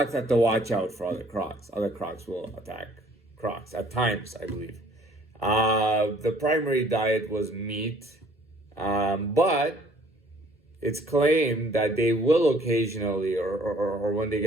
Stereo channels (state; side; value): normal; both; correlation 0.57